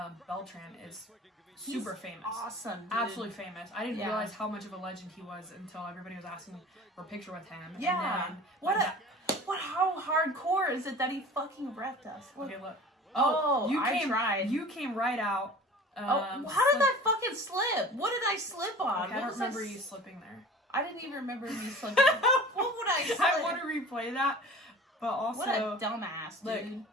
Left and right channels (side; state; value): both; normal; correlation 0.41